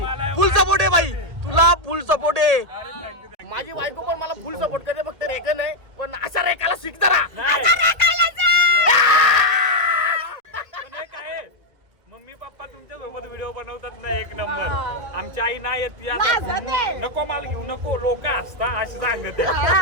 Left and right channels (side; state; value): left; late; 1.8 ms